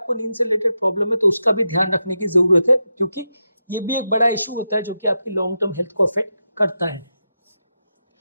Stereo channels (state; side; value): inverted; both; correlation -0.88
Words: नींद से रिलेटेड प्रॉब्लम है तो उसका भी ध्यान रखने की ज़रूरत है, क्योंकि ये भी एक बड़ा इशू होता है जो कि आपकी लॉन्ग टर्म हेल्थ को अफेक्ट करता है।